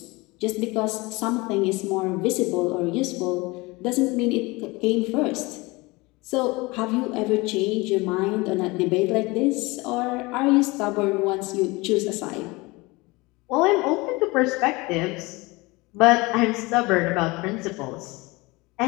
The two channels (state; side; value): quieter; right; 23.6 dB